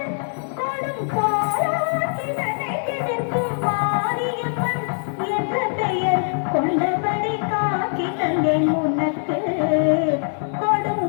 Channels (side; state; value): right; silent; digital silence